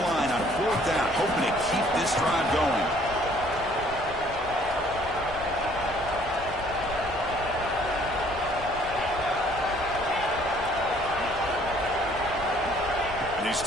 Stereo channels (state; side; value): noise; left; rumble, 15 dB below the sound